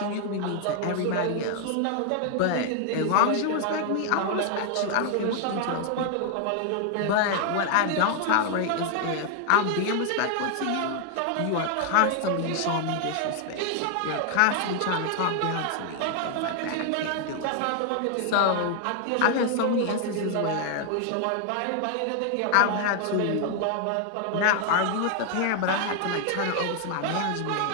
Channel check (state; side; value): different; both; correlation 0.00